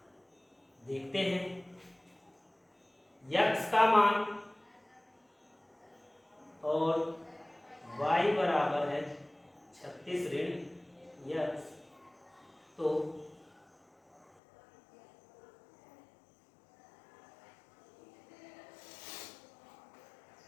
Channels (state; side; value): drops out; right; at 14.2 s